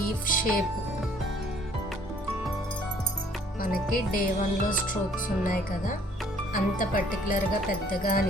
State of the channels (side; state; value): both; normal; correlation 0.58